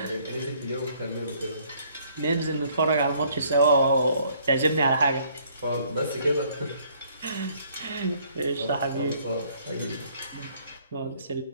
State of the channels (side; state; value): both; inverted; correlation -0.63